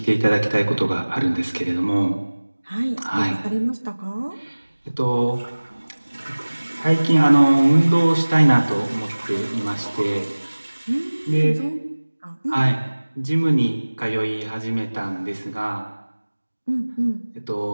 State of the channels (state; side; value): inverted; both; correlation -1.00